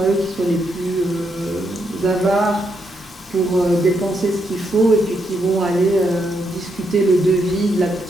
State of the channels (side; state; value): both; normal; correlation 0.79